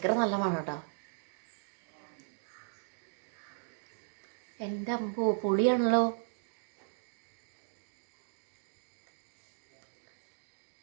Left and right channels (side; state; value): left; silent; digital silence